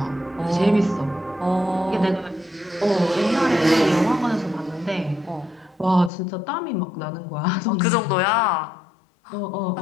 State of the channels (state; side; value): drops out; right; at 6.1 s